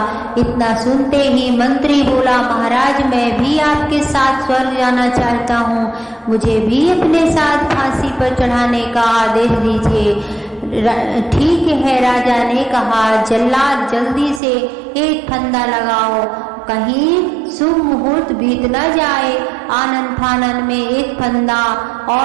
इतना सुनते ही मंत्री बोला, महाराज, मैं भी आपके साथ स्वर्ग जाना चाहता हूँ, मुझे भी अपने साथ फांसी पर चढ़ाने का आदेश दीजिए। ठीक है, राजा ने कहा, जल्लाद जल्दी से एक फंदा लगाओ, कहीं शुभ मुहूर्त बीत न जाए। आनन फानन में एक फंदा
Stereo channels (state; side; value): drops out; left; at 14.4 s